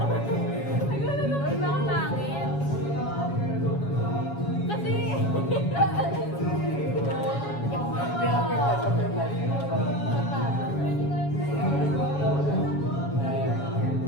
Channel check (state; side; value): late; right; 7.2 ms